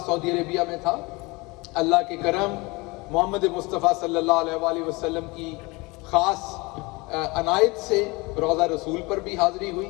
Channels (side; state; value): right; quieter; 25.0 dB